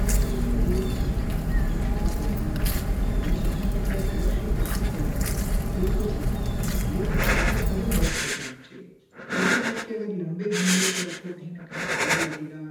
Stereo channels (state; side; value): identical; both; correlation 1.00